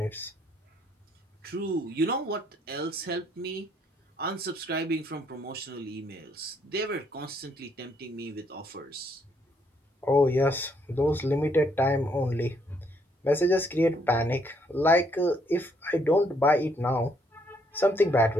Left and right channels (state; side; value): normal; both; correlation 0.70